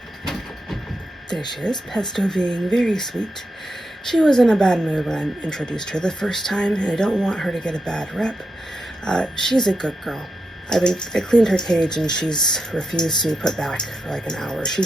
there she is, Pesto being very sweet. She was in a bad mood when I introduced her the first time, and I don't want her to get a bad rep. She's a good girl. I cleaned her cage, and she's refused to be put back for like an hour. She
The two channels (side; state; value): both; normal; correlation 0.86